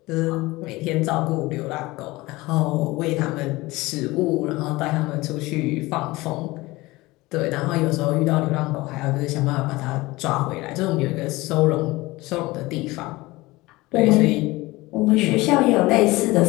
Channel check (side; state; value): right; quieter; 20.6 dB